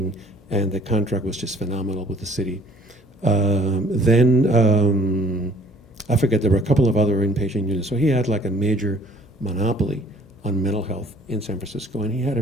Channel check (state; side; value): normal; both; correlation 0.56